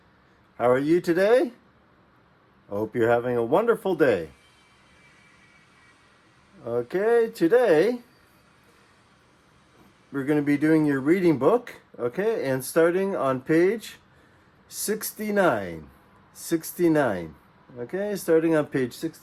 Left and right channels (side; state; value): both; identical; correlation 1.00